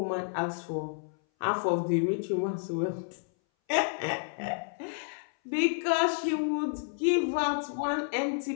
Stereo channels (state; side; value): silent; right; 58 dB below the other